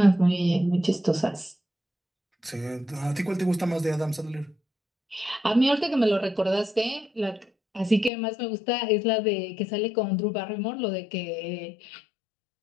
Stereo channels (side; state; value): right; drops out; at 8.1 s